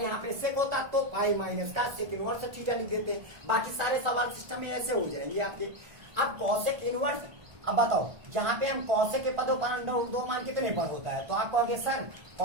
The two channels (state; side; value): late; left; 1.5 ms